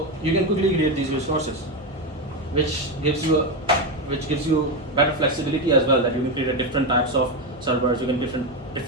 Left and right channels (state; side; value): normal; both; correlation 0.12